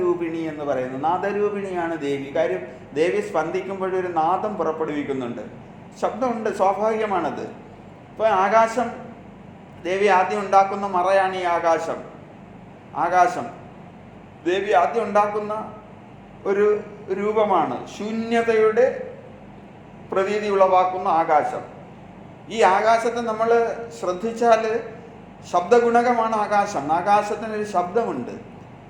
എന്ന് പറയുന്നത്, നാദരൂപിണിയാണ് ദേവി. കാര്യം ദേവി സ്പന്ദിക്കുമ്പോഴൊരു നാദം പുറപ്പെടുവിക്കുന്നുണ്ട്, ശബ്ദമുണ്ട്, സ്വാഭാവികമാണത്. ഇപ്പോൾ ആകാശം, ദേവി ആദ്യം ഉണ്ടാക്കുന്ന മറയാണ് ഈ ആകാശം. ആകാശം ദേവി ആദ്യം ഉണ്ടാക്കുന്ന ഒരു രൂപമാണ്, ശൂന്യതയുടെ പ്രതീതി ഉളവാക്കുന്ന ആകാശം. ഈ ആകാശത്തെ നമ്മൾ ശ്രദ്ധിച്ചാൽ ശബ്ദഗുണകമാണ് ആകാശം. ആകാശത്തിനൊരു ശബ്ദമുണ്ട്,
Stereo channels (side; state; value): both; identical; correlation 1.00